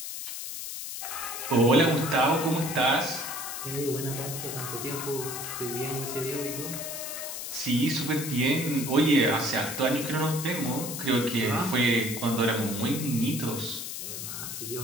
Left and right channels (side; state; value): left; noise; hiss, 6 dB below the sound